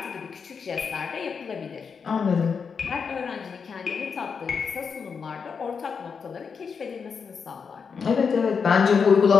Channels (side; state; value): right; quieter; 5.9 dB